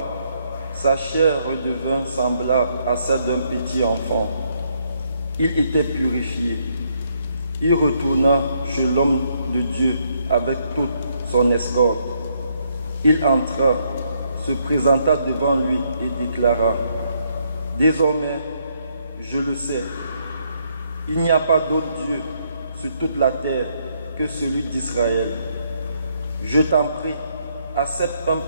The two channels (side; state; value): both; inverted; correlation -0.73